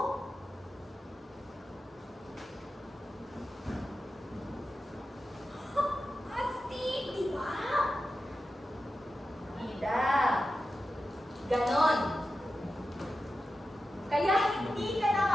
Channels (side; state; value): both; normal; correlation 0.92